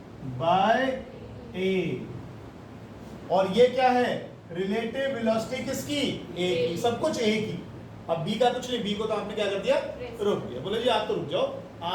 बाय ए। और ये क्या है? रिलेटिव वेलोसिटी किसकी? ए की। सब कुछ ए की। अब बी का कुछ नहीं, बी को तो आपने क्या कर दिया? रोक दिया। बोले जी आप तो रुक जाओ,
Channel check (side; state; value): both; identical; correlation 1.00